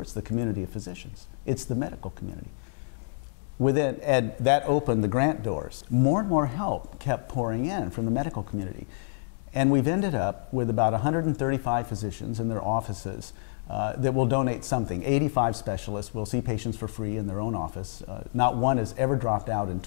is the community of physicians. It's the medical community. And that opened the grant doors. More and more help kept pouring in from the medical community. And we've ended up with about 135 physicians in their offices that will donate something. 85 specialists will see patients for free in their own office. Not one has ever dropped out in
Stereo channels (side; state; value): right; silent; digital silence